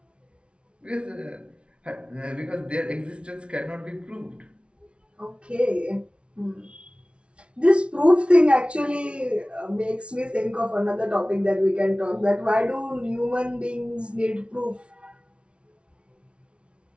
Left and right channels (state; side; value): late; left; 0.059 ms